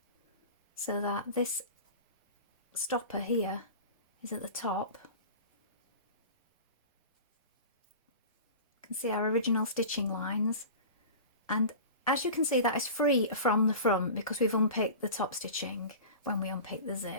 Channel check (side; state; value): both; inverted; correlation -0.35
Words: so that this stopper here is at the top. You can see our original stitching lines, and as you can see, that is free from the front because we've unpicked the top stitching when we unpick the